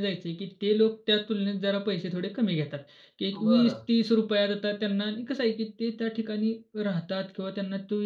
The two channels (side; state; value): both; identical; correlation 1.00